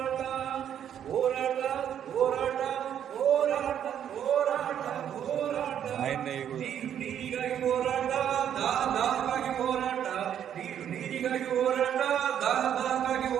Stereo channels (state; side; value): quieter; left; 9.6 dB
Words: ಹೋರಾಟ ಹೋರಾಟ ಹೋರಾಟ ಹೋರಾಟ ಹೋರಾಟ ನೀರಿಗಾಗಿ ಹೋರಾಟ ದಾಹಕ್ಕಾಗಿ ಹೋರಾಟ ನೀರಿಗಾಗಿ ಹೋರಾಟ ದಾಹಕ್ಕಾಗಿ